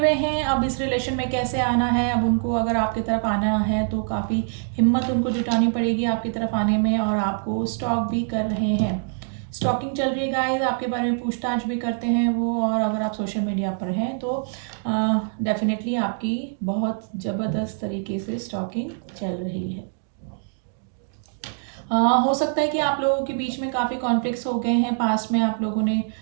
हैं अब इस रिलेशन में कैसे आना है। अब उनको अगर आपकी तरफ आना है तो काफ़ी हिम्मत उनको जुटानी पड़ेगी आपकी तरफ आने में, और आपको स्टॉक भी कर रहे हैं। स्टॉकिंग चल रही है गाइस, आपके बारे में पूछताछ भी करते हैं वो, और अगर आप सोशल मीडिया पर हैं तो डेफिनेटली आपकी बहुत ज़बरदस्त तरीके से स्टॉकिंग चल रही है। हो सकता है कि आप लोगों के बीच में काफ़ी कॉन्फ्लिक्ट्स हो गए हैं, पास्ट में आप लोगों ने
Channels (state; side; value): silent; left; digital silence